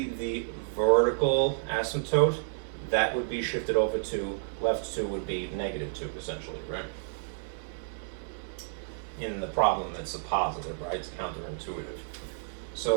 the vertical asymptote, that would be shifted over to left 2 would be -2, essentially, right? In the problem, it's a positive, right? It's counterintuitive.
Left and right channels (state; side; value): silent; left; digital silence